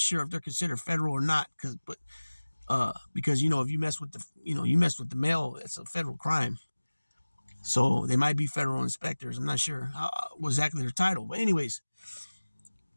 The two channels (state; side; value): inverted; both; correlation -1.00